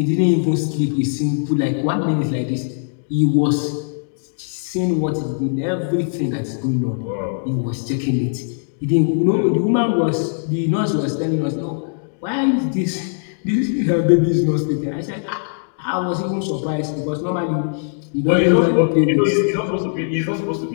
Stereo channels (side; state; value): right; silent; digital silence